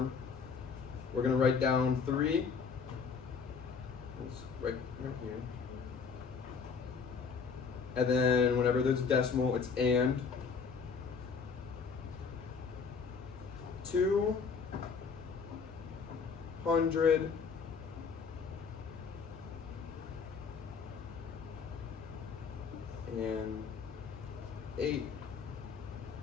we're gonna write down 3. It's right here. And then whenever there's a decimal, it's and. 200 and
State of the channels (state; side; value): quieter; right; 5.5 dB